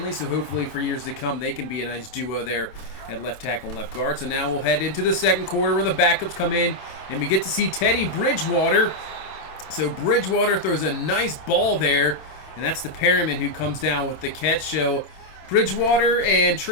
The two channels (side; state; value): right; late; 27 ms